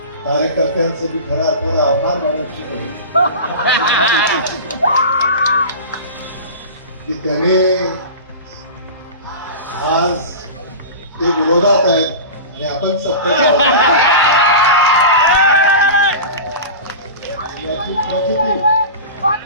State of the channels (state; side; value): inverted; both; correlation -0.31